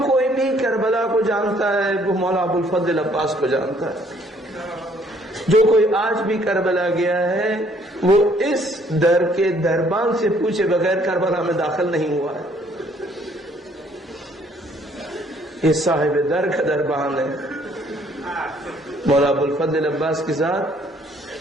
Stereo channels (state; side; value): normal; both; correlation 0.63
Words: کوئی بھی کربلا کو جانتا ہے وہ مولا ابو الفضل عباس کو جانتا ہے. جو کوئی آج بھی کربلا گیا ہے وہ اس در کے دربان سے پوچھے بغیر کربلا میں داخل نہیں ہوا ہے. یہ صاحب در کا دربان ہے. مولا ابو الفضل عباس کی ذات